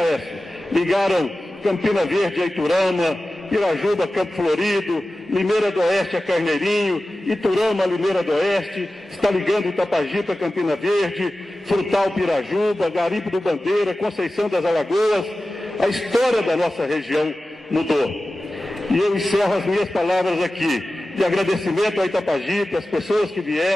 ligaram Campina Verde a Iturama, Pirajuba a Campo Florido, Limeira do Oeste a Carneirinho, Iturama a Limeira do Oeste, está ligando Itapajipe a Campina Verde, Frutal Pirajuba, Garimpo do Bandeira, Conceição das Alagoas. A história da nossa região mudou. E eu encerro as minhas palavras aqui, de agradecimento a Itapajipe, as pessoas que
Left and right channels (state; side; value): normal; both; correlation 0.95